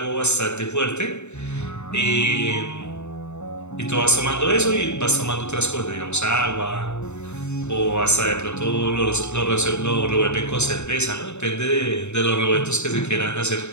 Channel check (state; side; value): late; right; 0.82 ms